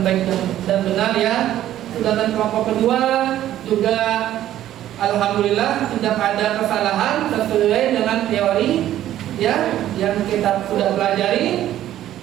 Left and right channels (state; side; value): quieter; left; 12.6 dB